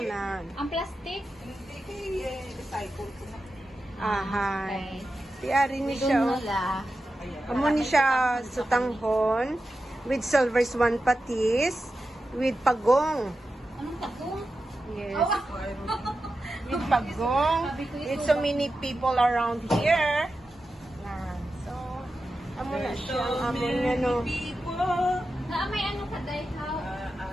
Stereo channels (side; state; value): both; normal; correlation 0.91